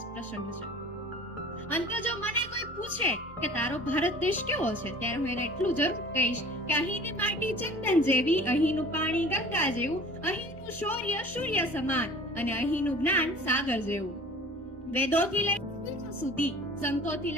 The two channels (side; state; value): both; normal; correlation 0.44